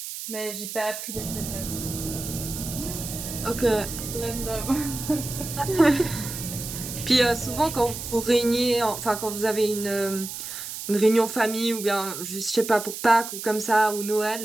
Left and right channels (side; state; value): right; noise; hiss, 8 dB below the sound